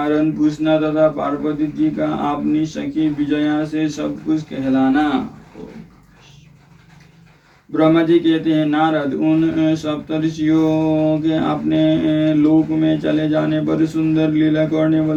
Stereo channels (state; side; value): identical; both; correlation 1.00